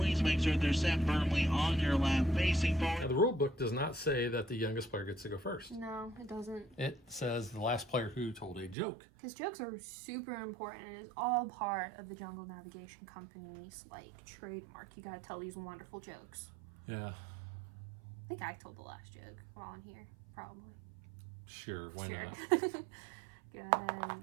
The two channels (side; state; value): left; drops out; at 8.8 s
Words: make sure they're sat firmly on your lap, facing Now, forward. the rule book does not say that the youngest player gets to go first. No, it doesn't. It says the last player who told a joke. Because jokes are super important. It is all part of the Jungle Navigation Company's trademark. You gotta tell these wonderful jokes. Yeah, I think I told the last joke while I'm here, probably. sure, why not? Go ahead